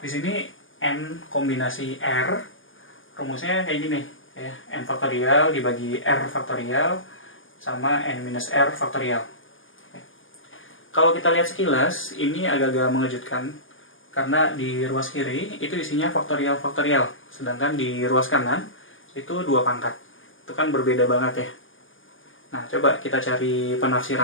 di sini N kombinasi R, rumusnya kayak gini, ya, N faktorial dibagi R faktorial sama N minus R faktorial. Oke. Kalau kita lihat sekilas, ini agak-agak mengejutkan, karena di ruas kiri itu isinya faktorial-faktorial, sedangkan di ruas kanan itu 2 pangkat. Itu kan berbeda banget ya. Nah, coba kita cari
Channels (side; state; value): right; late; 0.58 ms